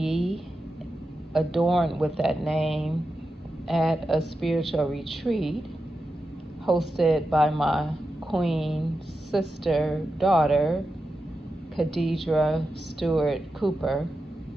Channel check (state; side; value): normal; both; correlation 0.90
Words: adorned with that name at a spiritual retreat hosted by my queen sister daughter, Khadijah Stewart Cooper,